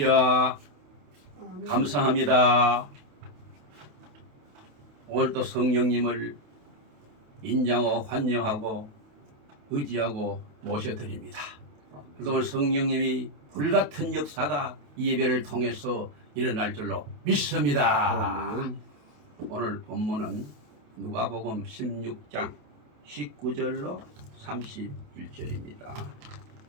감사합니다. 오늘도 성령님을 인정하고 환영하고 의지하고 모셔드립니다. 그래서 오늘 성령님이 불같은 역사가 이 예배를 통해서 일어날 줄로 믿습니다. 오늘 본문은 누가복음 16장 19절로 31절입니다.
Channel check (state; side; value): late; left; 28 ms